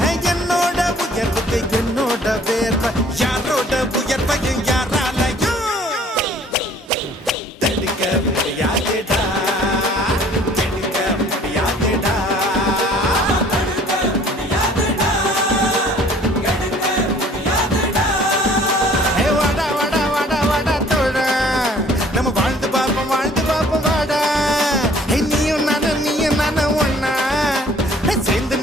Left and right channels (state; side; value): normal; both; correlation 0.54